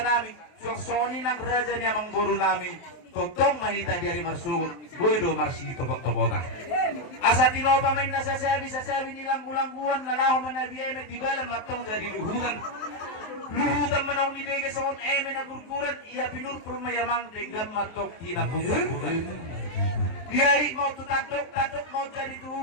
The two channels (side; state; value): right; late; 23 ms